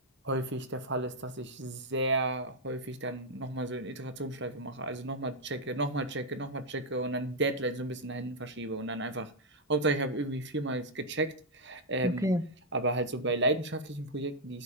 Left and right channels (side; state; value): both; normal; correlation -0.02